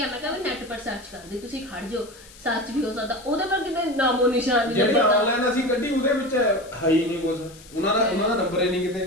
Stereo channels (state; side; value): noise; left; hiss, 22 dB below the sound